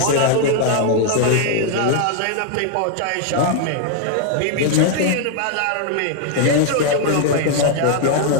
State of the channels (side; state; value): both; different; correlation 0.00